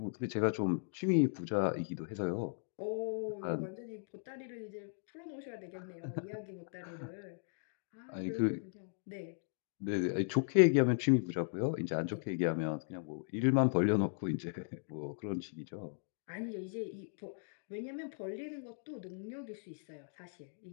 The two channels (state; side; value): silent; right; digital silence